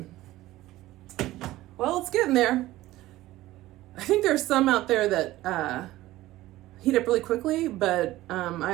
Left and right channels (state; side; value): quieter; left; 16.4 dB